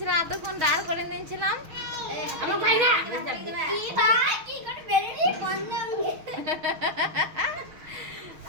এতক্ষণ দাঁড় করে নিয়েছিলাম।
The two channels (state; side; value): late; left; 6.4 ms